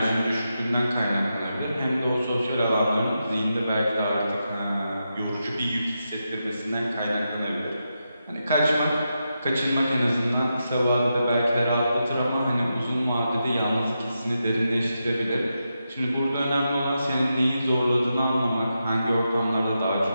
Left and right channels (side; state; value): both; inverted; correlation -0.87